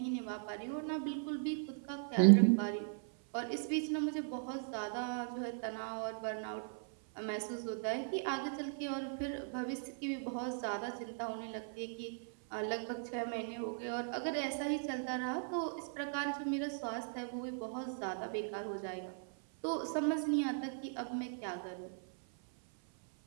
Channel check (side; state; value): left; silent; 52 dB below the other